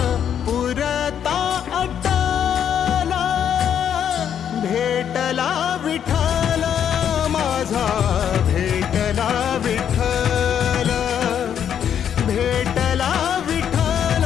पुरता अटला, भेटला विठ्ठल माझा, भेटला विठ्ठल, भेटला विठ्ठल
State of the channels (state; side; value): quieter; right; 8.9 dB